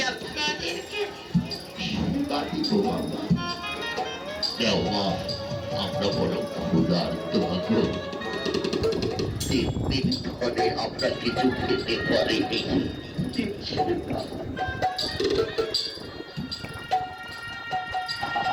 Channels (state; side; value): identical; both; correlation 1.00